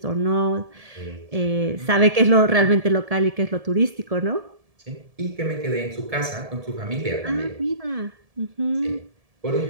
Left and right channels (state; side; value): late; left; 1.7 ms